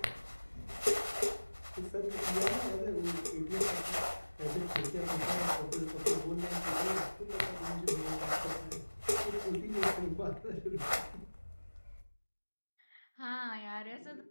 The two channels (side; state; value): both; inverted; correlation -1.00